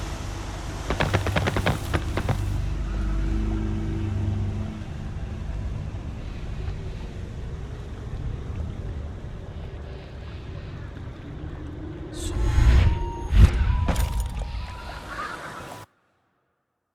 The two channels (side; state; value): both; identical; correlation 1.00